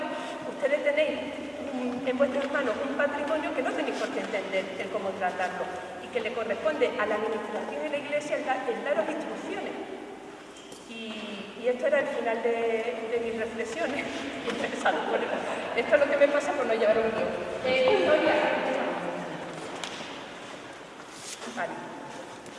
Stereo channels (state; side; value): identical; both; correlation 1.00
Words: ustedes tenéis en vuestras manos un patrimonio que no tenéis por qué entender el cómo tratarlo y que le corresponde a la administración y la iglesia el daros instrucciones. Y esto era el final de mis reflexiones. Esto es lo que me pasa por no llevar un guión. Vale.